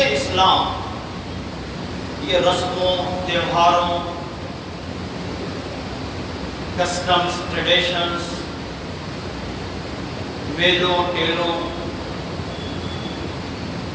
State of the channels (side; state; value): both; identical; correlation 1.00